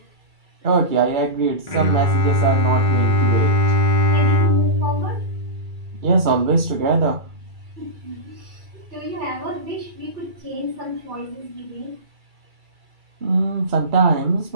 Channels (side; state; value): left; late; 2.3 ms